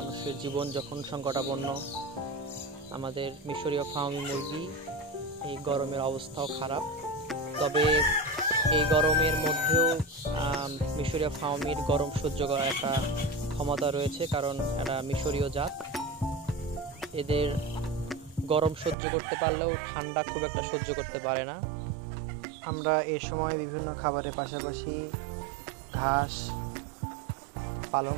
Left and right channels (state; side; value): drops out; left; at 18.9 s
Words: জীবন যখন সংকটাপন্ন, আমাদের মিশরীয় ফার্মি মুরগি এই গরমের অবস্থাও খারাপ। তবে এই গরমের মধ্যেও মিশরীয় ফার্মির গরম সহ্য করার একটা ক্ষমতা রয়েছে, কারণ এরা মিশরীয় জাত। এদের গরম সহ্য করতে পারলেও ঠান্ডা খুব একটা সহ্য করতে পারে না। আমরা এই সময় বিভিন্ন খাবারের পাশাপাশি ঘাস, পালং